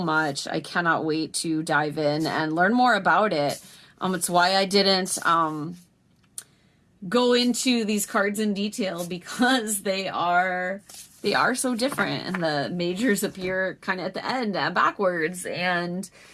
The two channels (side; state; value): both; identical; correlation 1.00